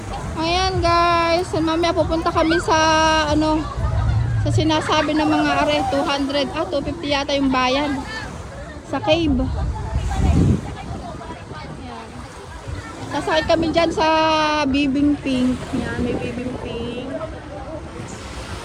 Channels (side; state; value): both; identical; correlation 1.00